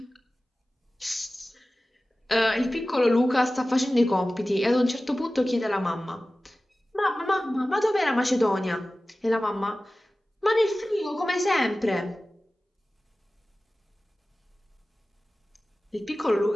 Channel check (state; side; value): normal; both; correlation 0.96